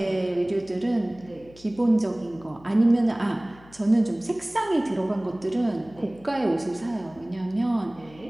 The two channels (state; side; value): noise; left; hum, 24 dB below the sound